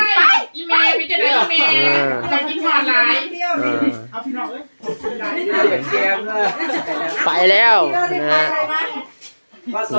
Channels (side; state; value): both; inverted; correlation -1.00